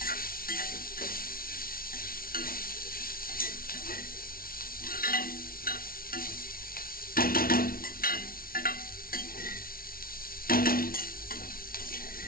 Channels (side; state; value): right; late; 0.43 ms